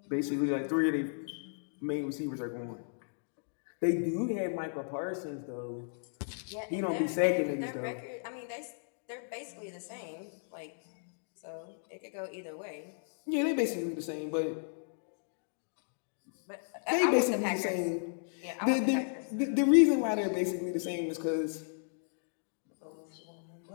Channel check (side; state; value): right; silent; digital silence